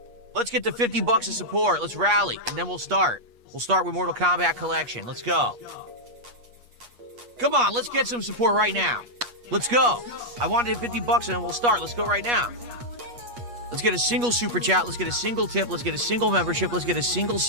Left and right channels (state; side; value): late; left; 8.3 ms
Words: Let's get to $50 of support. Let's rally, and then we'll start. We'll start with Mortal Kombat Collection. Let's go. Come on, let's get some support right now. Let's go. I wanted $50, and then we'll start. Let's go right now. Let's get a single super chat. Let's get a single tip. Let's get a single membership. Let's get a single